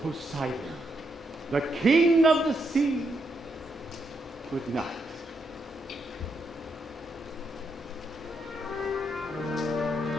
the king of the sea. Good night.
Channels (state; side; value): normal; both; correlation 0.79